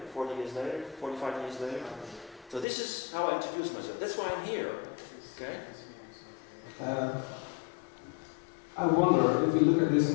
40 years later, 45 years later. So this is how I introduce myself. That's why I'm here. Okay? I wonder, if you look at this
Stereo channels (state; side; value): drops out; right; at 2.7 s